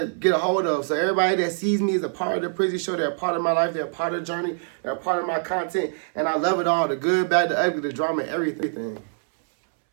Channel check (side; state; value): left; silent; 63 dB below the other